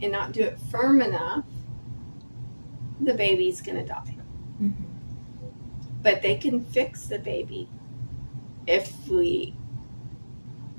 and not do it firm enough, the baby's going to die. But they can fix the baby if we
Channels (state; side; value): inverted; both; correlation -1.00